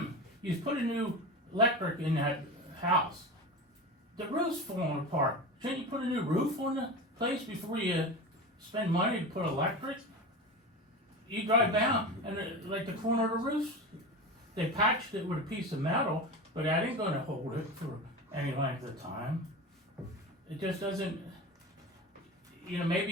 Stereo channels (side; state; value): both; normal; correlation 0.27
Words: you put a new electric in that house. The roof's falling apart. Shouldn't you put a new roof on the place before you spend money to put electric? You drive down and like the corner of the roof, they patched it with a piece of metal, but that ain't gonna hold it for any length of time. It just doesn't, you know,